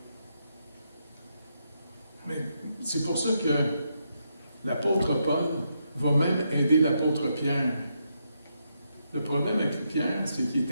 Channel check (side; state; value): both; inverted; correlation -0.81